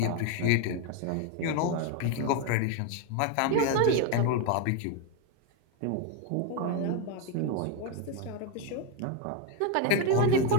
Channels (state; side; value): different; both; correlation 0.01